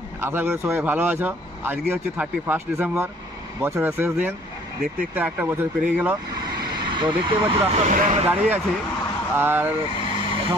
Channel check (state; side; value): normal; both; correlation 0.56